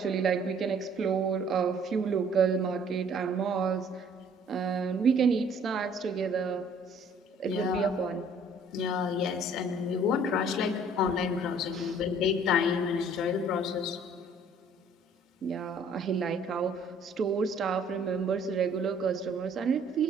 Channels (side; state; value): both; normal; correlation 0.57